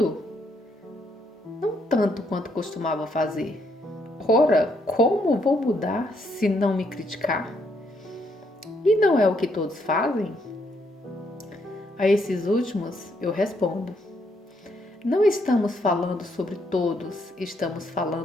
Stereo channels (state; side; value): normal; both; correlation 0.74